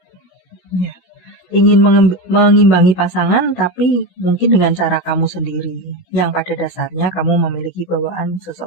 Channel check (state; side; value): late; right; 16 ms